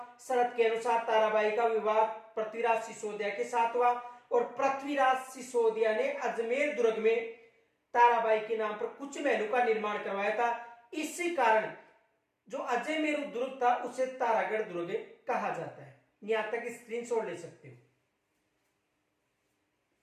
शर्त के अनुसार ताराबाई का विवाह पृथ्वीराज सिसोदिया के साथ हुआ। और पृथ्वीराज सिसोदिया ने अजमेर दुर्ग में ताराबाई के नाम पर कुछ महलों का निर्माण करवाया था। इसी कारण जो अजय मेरु दुर्ग था उसे तारागढ़ दुर्ग कहा जाता है। यहां तक स्क्रीनशॉट ले सकते हो।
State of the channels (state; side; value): identical; both; correlation 1.00